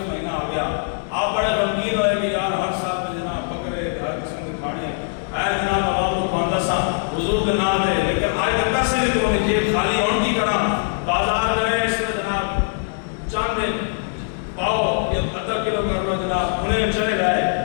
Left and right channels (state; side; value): silent; right; digital silence